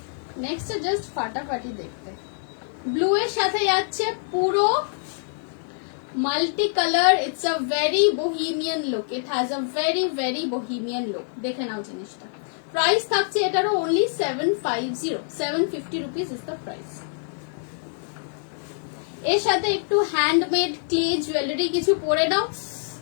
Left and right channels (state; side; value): silent; right; digital silence